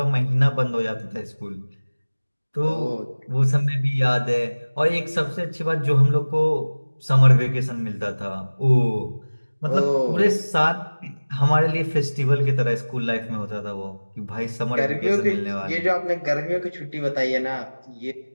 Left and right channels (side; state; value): both; inverted; correlation -1.00